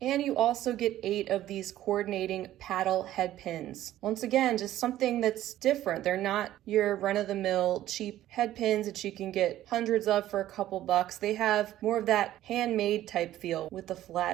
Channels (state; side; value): quieter; left; 13.5 dB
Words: And you also get 8 of these coordinating paddle head pins. Once again, just something that's different. They're not your run-of-the-mill cheap head pins that you can get hundreds of for a couple bucks. They have more of that handmade type feel with the